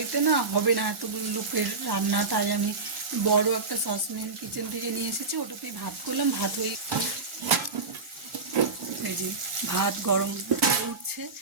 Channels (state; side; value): quieter; left; 4.1 dB